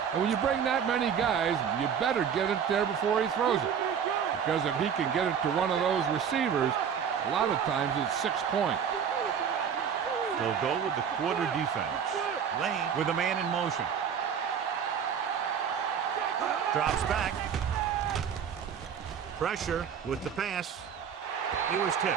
And when you bring that many guys, you better get it there before he throws it. Because if he can get it to one of those receivers, a lot of times it's 6 points. They'll go with the quarter defense. Lane with a man in motion. Drops back. Pressure with the pass. He was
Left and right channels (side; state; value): left; quieter; 7.7 dB